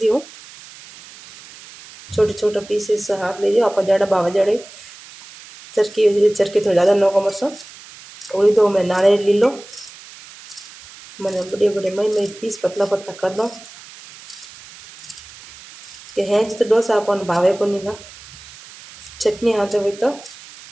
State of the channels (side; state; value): right; noise; hiss, 19 dB below the sound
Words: हूँ, छोटे छोटे पीसेस हाथ लीजिए। आप जड़ा बावा जड़े चरकी थोड़ा ज़्यादा नौको मरचा और दो मैं नारियल ली लो। मैंने बड़े बड़े मई मई पीस पतला पतला कर दो कि हेंच तो डोसा अपन भावे को नहीं था। चटनी हाथे हुई तो